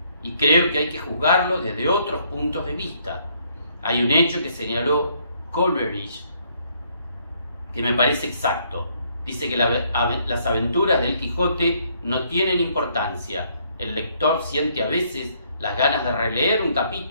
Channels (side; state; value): both; inverted; correlation -0.68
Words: y creo que hay que juzgarlo desde otros puntos de vista. Hay un hecho que señaló Coleridge que me parece exacto. Dice que las aventuras del Quijote no tienen importancia. El lector siente a veces las ganas de releer un